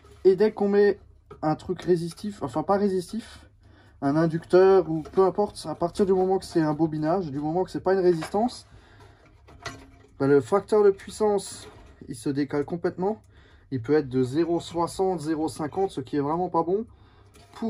Et dès qu'on met un truc résistif, enfin pas résistif, un inducteur ou peu importe, à partir du moment que c'est un bobinage, du moment que c'est pas une résistance, le facteur de puissance il se décale complètement. Il peut être de 0,60, 0,50, ce qui est vraiment pas bon.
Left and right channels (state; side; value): identical; both; correlation 1.00